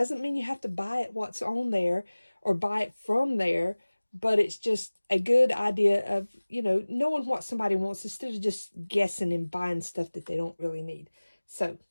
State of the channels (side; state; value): both; inverted; correlation -1.00